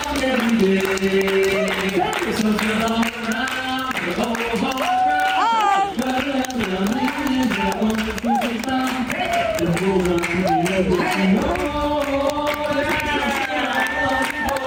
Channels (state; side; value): identical; both; correlation 1.00